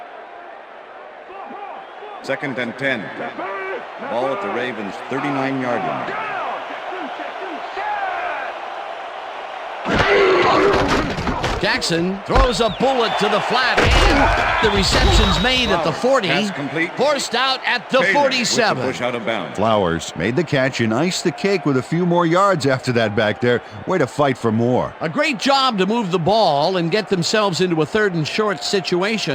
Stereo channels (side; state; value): both; identical; correlation 1.00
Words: Second and 10. Ball at the Ravens' 39-yard line. Jackson throws a bullet to the flat, and the reception's made at the 40, forced out at the 47. Push out of bounds. Flowers made the catch and iced the cake with a few more yards after that back there. Way to fight for more. A great job to move the ball and get themselves into a 3rd and short